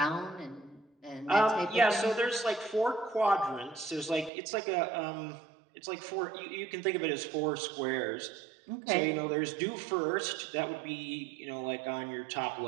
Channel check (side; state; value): left; drops out; at 4.3 s